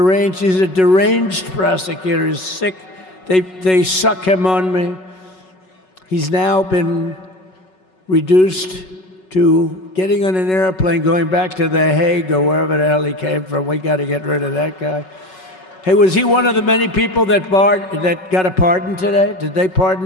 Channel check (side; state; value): right; late; 5.4 ms